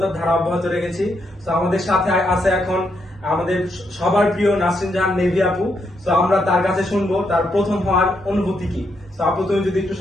ধারা অব্যাহত রেখেছি। তো আমাদের সাথে আছে এখন আমাদের সবার প্রিয় নাসরিন জাহান নেভি আপু। তো আমরা তার কাছে শুনবো তার প্রথম হওয়ার অনুভূতি কি। তো আপু, তুমি যদি একটু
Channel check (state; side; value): normal; both; correlation 0.79